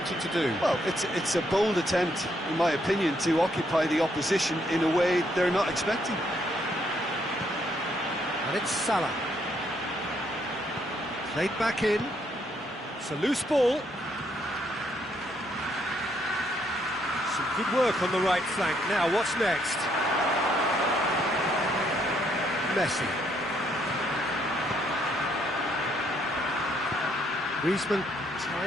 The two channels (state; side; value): normal; both; correlation 0.72